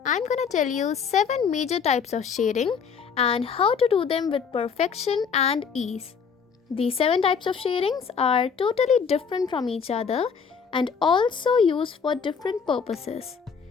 I'm gonna tell you 7 major types of shading and how to do them with perfection and ease. These 7 types of shadings are totally different from each other and also used for different purposes.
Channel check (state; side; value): quieter; right; 6.3 dB